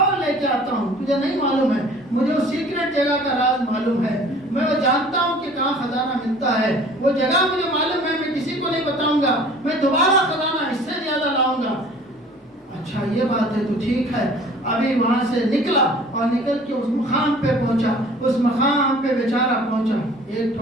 لے کے آتا ہوں. تجھے نہیں معلوم ہے، مجھے وہ سیکرٹ جگہ کا راز معلوم ہے. میں وہ جانتا ہوں کہ کہاں خزانہ ملتا ہے. وہ جگہ مجھے معلوم ہے، میں کسی کو نہیں بتاؤں گا. میں دوبارہ خزانہ اس سے زیادہ لاؤں گا. اچھا یہ بات ہے تو ٹھیک ہے. ابھی وہاں سے نکلا اور نکل کے اس مقام پہ پہنچا. اس مقام پہ بیچارہ پہنچا، ایک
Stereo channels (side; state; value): both; normal; correlation 0.49